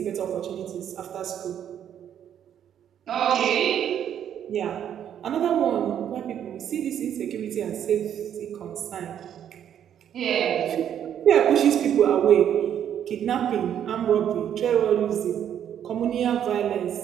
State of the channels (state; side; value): quieter; left; 9.6 dB